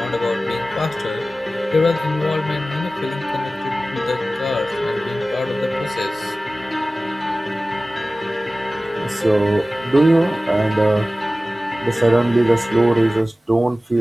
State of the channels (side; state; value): both; normal; correlation 0.96